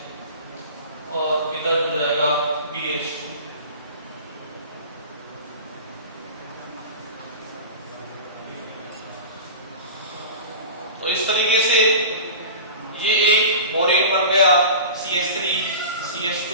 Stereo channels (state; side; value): inverted; both; correlation -0.34